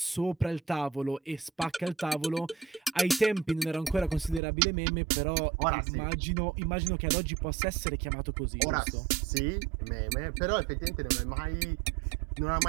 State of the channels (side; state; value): left; drops out; at 4.4 s